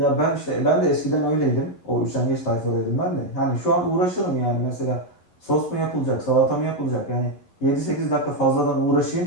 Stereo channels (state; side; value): late; right; 11 ms